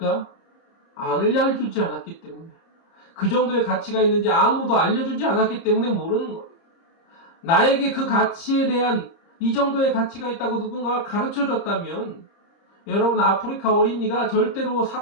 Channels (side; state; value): right; late; 30 ms